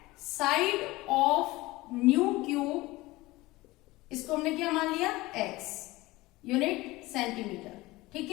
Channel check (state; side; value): quieter; right; 20.0 dB